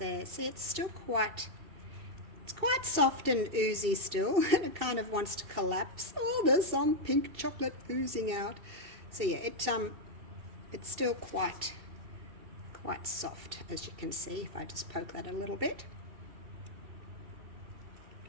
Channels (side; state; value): left; late; 2.7 ms